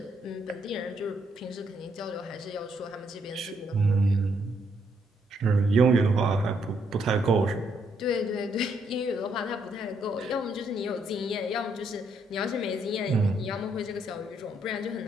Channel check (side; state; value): both; normal; correlation 0.73